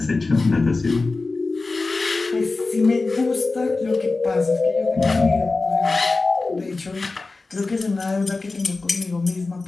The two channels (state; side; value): quieter; right; 3.6 dB